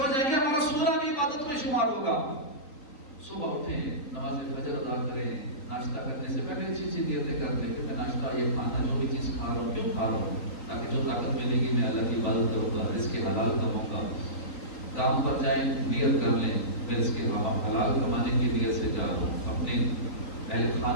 جائیں گے، ہمارا سونا بھی عبادت میں شمار ہوگا. صبح اٹھیں، نماز فجر ادا کریں، ناشتہ کرنے سے پہلے اچھی اچھی نیتیں کر لیں کہ میں ناشتہ یہ کھانا جو بھی چیز کھا رہا ہوں کیوں کھا رہا ہوں، تاکہ جو طاقت ملے گی میں اللہ کی عبادت کروں گا، رزق حلال کروں گا. کام پر جائیں نیت کر لیں میں رزق حلال کمانے کی نیت سے جا رہا ہوں، اپنے اہل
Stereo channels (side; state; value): right; late; 3.9 ms